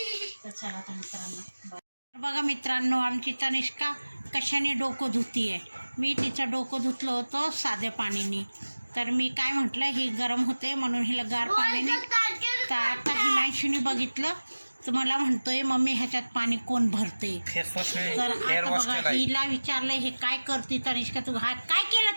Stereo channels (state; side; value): inverted; both; correlation -1.00